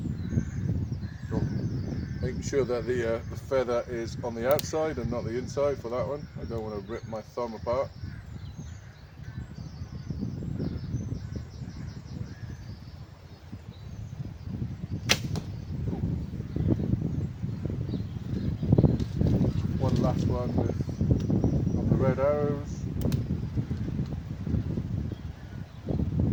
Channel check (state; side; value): identical; both; correlation 1.00